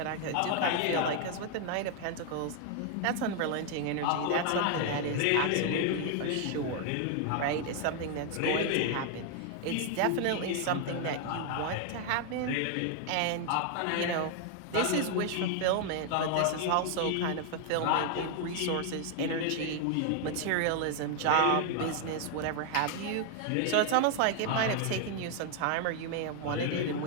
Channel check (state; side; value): different; both; correlation 0.00